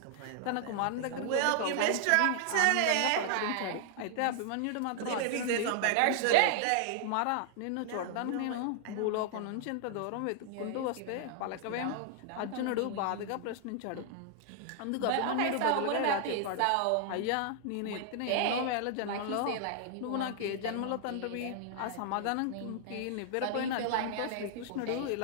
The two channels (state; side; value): different; both; correlation -0.01